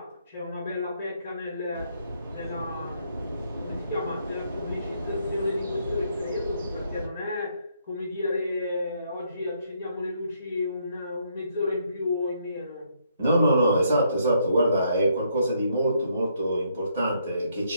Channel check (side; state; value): both; inverted; correlation -0.72